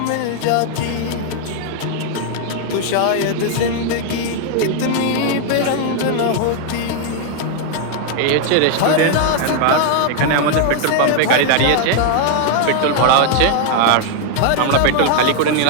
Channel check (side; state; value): both; different; correlation 0.00